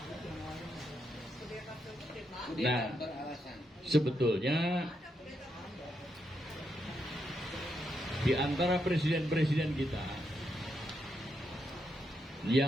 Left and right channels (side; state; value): both; normal; correlation 0.81